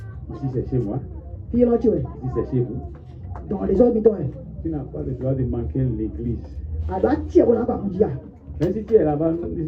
Ici, c'est chez moi. Ici, c'est chez vous. Tu n'as pas le droit de manquer l'église. Même si tu es là-bas,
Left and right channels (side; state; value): both; identical; correlation 1.00